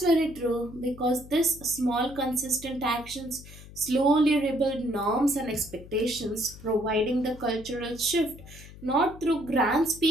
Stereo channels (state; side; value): noise; left; hum, 17 dB below the sound